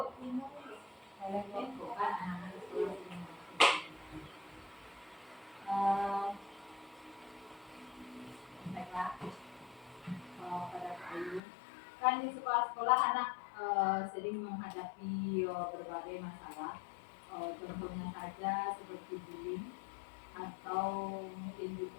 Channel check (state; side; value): drops out; right; at 11.4 s